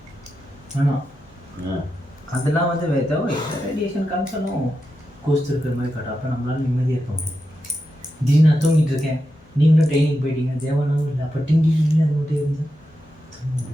அதெல்லாம் வந்து ஏதோ ரேடியேஷன் கன்சர்னும் கோஸ்ட் இருக்கிற மாதிரி காட்டும். அப்போ நம்மளால நிம்மதியாக இருக்க முடியும். திடீர்னு நான் தூங்கிட்டு இருக்கேன், நீங்களும் ட்ரைனிங் போயிட்டீங்க, தேவனாவும் இல்லை. அப்போ டிங்கி அது மட்டும் இருந்து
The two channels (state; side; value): normal; both; correlation 0.88